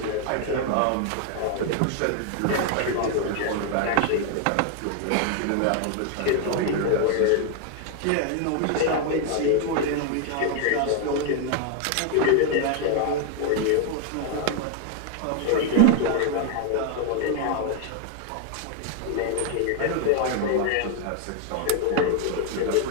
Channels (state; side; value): different; both; correlation 0.00